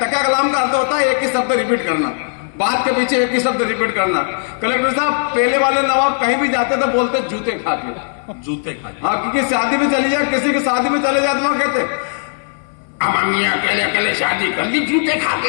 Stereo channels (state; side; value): silent; right; digital silence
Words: कलाम का अर्थ होता है एक ही शब्द रिपीट करना, बात के पीछे एक ही शब्द रिपीट करना। कलेक्टर साहब पहले वाले नवाब कहीं भी जाते तो बोलते जूते खा के, जूते खा के। हाँ, क्योंकि शादी में चली जाए, किसी की शादी में चले जाते वहां कहते अम्मी अकेले अकेले शादी कर ली जूते खा